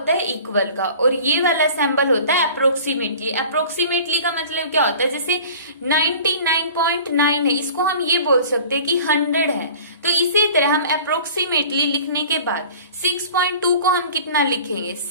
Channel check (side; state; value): both; inverted; correlation -0.43